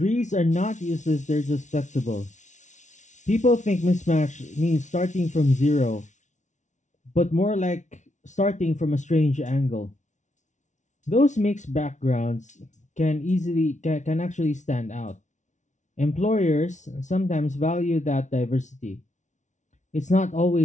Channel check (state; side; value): late; right; 0.36 ms